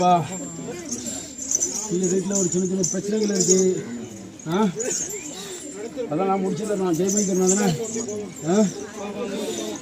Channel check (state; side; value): identical; both; correlation 1.00